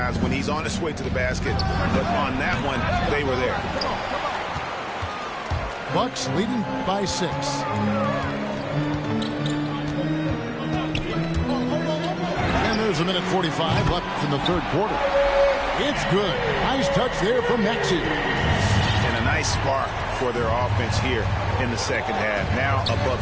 when he's on his way to the basket. But on that one, they were there. Bucks leading by 6. And there's a minute 45 left in the third quarter. It's good. Nice touch there from Maxey. And a nice spark for their offense here in the second half. Now above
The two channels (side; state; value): both; identical; correlation 1.00